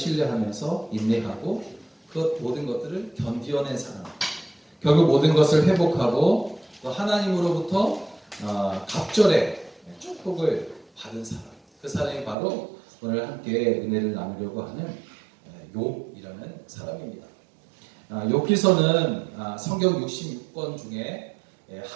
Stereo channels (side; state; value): left; drops out; at 12.4 s